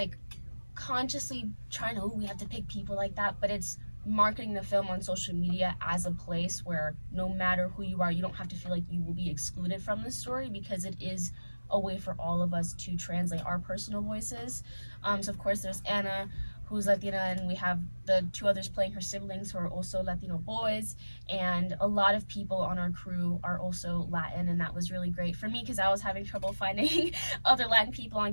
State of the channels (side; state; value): both; inverted; correlation -1.00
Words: consciously trying to, oh, we have to pick people like that, but it's marketing the film on social media as a place where no matter who you are, you don't have to feel like you will be excluded from the story, because it is a way for all of us to translate our personal voices. So of course there's Anna, who's Latina, and we have the two others playing her siblings who are also Latino boys, and a lot of people on our crew are also Latin, and that was really great for me because I was having trouble finding other Latin people